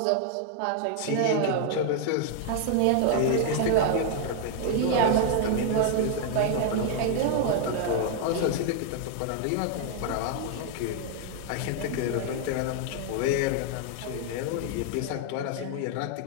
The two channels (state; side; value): different; both; correlation 0.00